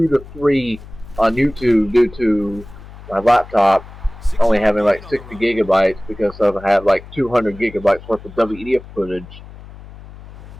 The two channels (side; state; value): left; noise; hum, 17 dB below the sound